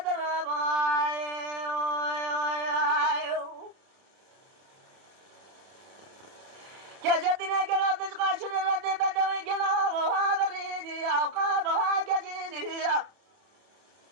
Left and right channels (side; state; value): left; late; 30 ms